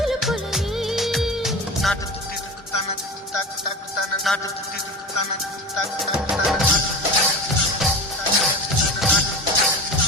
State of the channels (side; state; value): both; normal; correlation 0.31